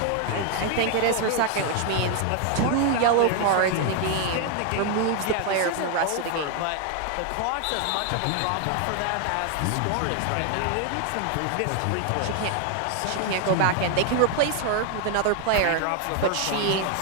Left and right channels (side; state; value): both; different; correlation 0.00